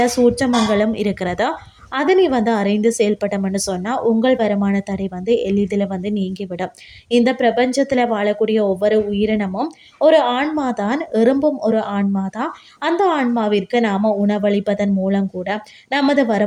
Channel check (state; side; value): identical; both; correlation 1.00